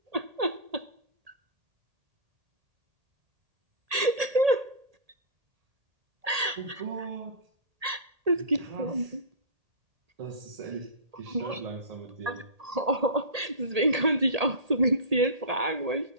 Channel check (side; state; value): left; late; 1.8 ms